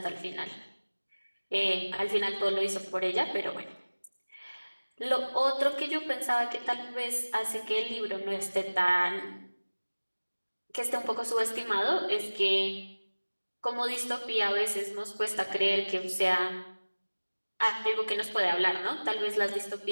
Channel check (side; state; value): both; inverted; correlation -1.00